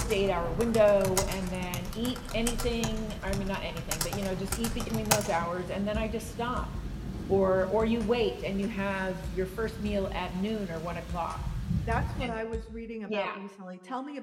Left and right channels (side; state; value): both; identical; correlation 1.00